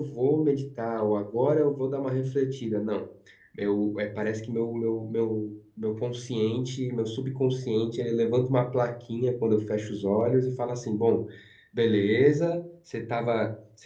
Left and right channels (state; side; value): identical; both; correlation 1.00